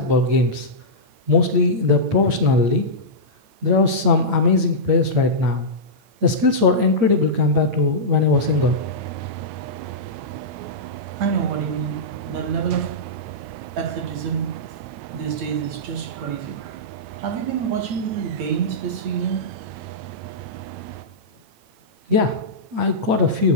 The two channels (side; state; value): left; late; 8.9 ms